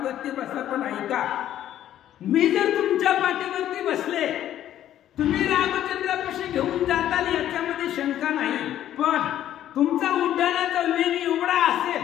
बसा पण ऐका मी जर तुमच्या पाठीवरती बसले तुम्ही रामचंद्रापाशी घेऊन जाताल याच्यामध्ये शंका नाही. पण तुमचा उड्डाणाचा वेग एवढा असेल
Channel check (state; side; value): quieter; right; 11.8 dB